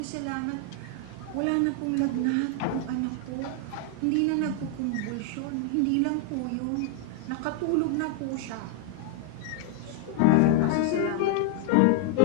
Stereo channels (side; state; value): both; different; correlation 0.00